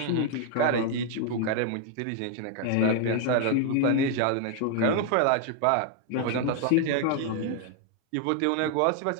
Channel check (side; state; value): both; different; correlation 0.00